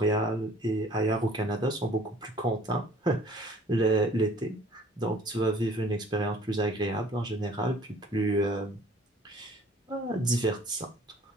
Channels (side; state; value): both; normal; correlation 0.53